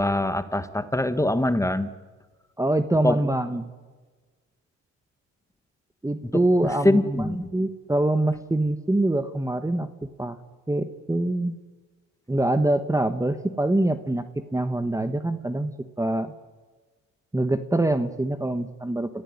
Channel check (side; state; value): both; normal; correlation 0.88